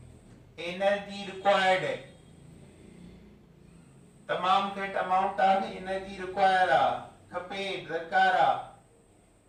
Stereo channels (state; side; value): identical; both; correlation 1.00